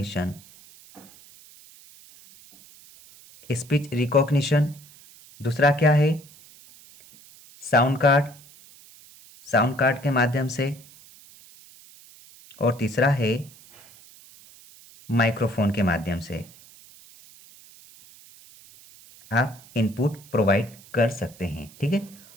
स्पीच रिकॉग्निशन, दूसरा क्या है साउंड कार्ड, साउंड कार्ड के माध्यम से, और तीसरा है माइक्रोफोन के माध्यम से आप इनपुट प्रोवाइड कर सकते हैं। ठीक है,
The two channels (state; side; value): noise; right; hiss, 23 dB below the sound